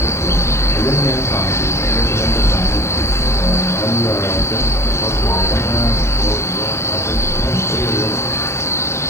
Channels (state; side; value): late; right; 0.13 ms